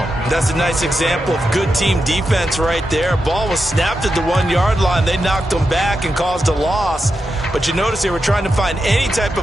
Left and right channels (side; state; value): both; normal; correlation 0.88